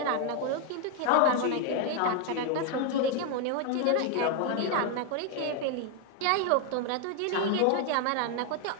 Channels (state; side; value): different; both; correlation 0.01